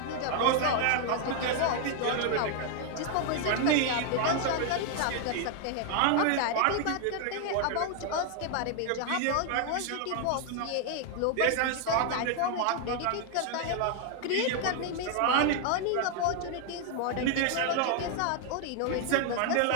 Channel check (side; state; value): both; different; correlation 0.00